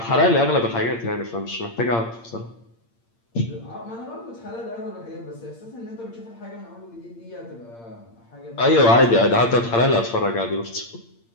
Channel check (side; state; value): right; late; 8.7 ms